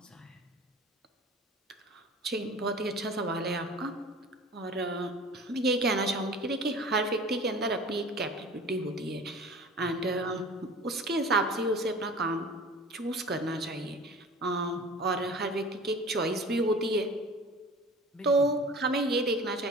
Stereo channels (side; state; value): both; normal; correlation 0.41